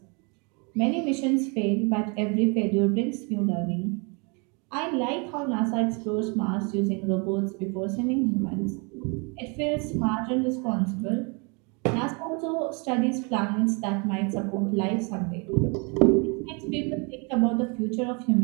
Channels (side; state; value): left; quieter; 32.7 dB